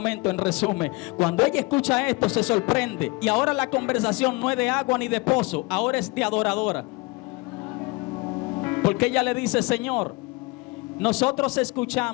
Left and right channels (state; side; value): quieter; right; 25.7 dB